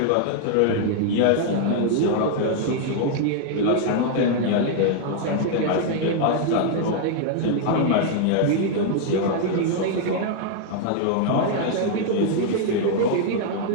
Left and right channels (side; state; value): both; different; correlation 0.00